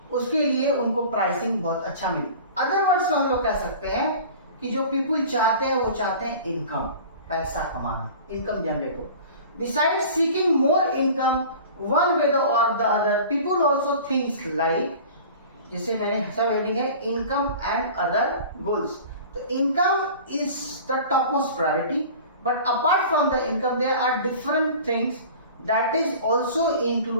उसके लिए उनको प्राइसिंग बहुत अच्छा मिले। अदर वर्ड्स में हम लोग कह सकते हैं कि जो पीपल चाहते हैं वो चाहते हैं इनकम, पैसा कमाना, इनकम जनरेट हो। Besides seeking more income one way और the other, people also things like, जिसे मैंने सब हेडिंग है इनकम एंड अदर गोल्स। तो income is the top most priority, but apart from the income there are different things that is also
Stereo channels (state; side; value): inverted; both; correlation -0.41